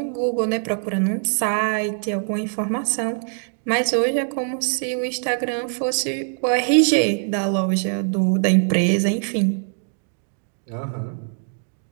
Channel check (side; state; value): left; silent; 62 dB below the other